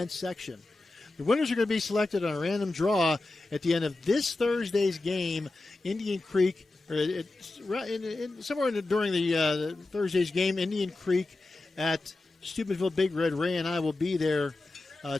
section. The winners are going to be selected on a random draw at the end of this Thursday's game. Indian Creek, during the Thursday's game, Indian Creek at Steubenville Big Red. Ray and I will be there.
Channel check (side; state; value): right; quieter; 3.0 dB